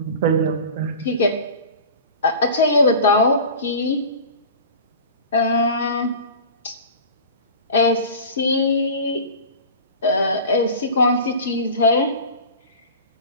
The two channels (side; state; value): both; inverted; correlation -0.37